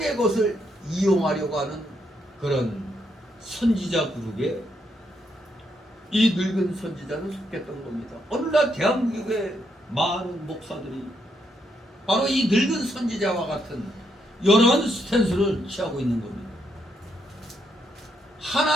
것을 이용하려고 하는 그런 선지자 그룹에 이 늙은 선지자는 속했던 겁니다. 오늘날 대한민국의 많은 목사들이 바로 이 늙은 선지자와 같은 이런 스탠스를 취하고 있는 겁니다.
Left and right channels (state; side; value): normal; both; correlation 0.77